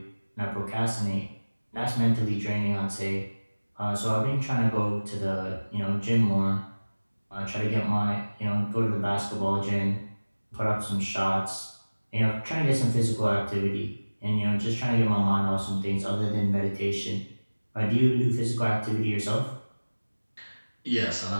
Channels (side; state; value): both; inverted; correlation -1.00